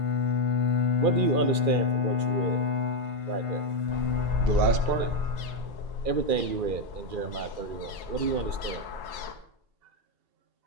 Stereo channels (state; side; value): late; left; 2.4 ms